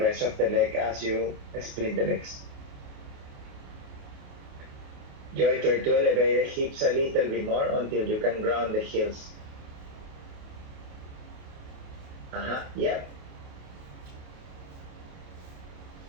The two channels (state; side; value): late; left; 28 ms